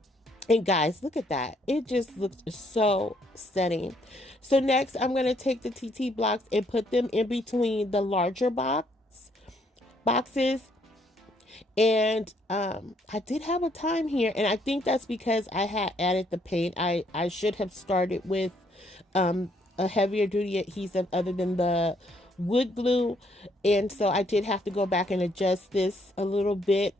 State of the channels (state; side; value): normal; both; correlation 0.69